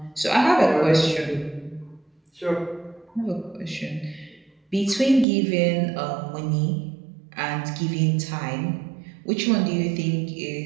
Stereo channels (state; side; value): drops out; left; at 5.2 s